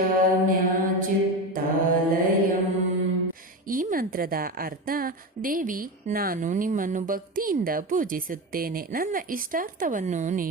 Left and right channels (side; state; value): both; normal; correlation 0.21